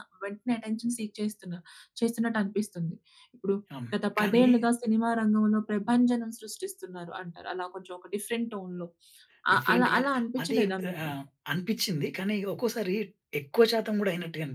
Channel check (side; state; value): both; identical; correlation 1.00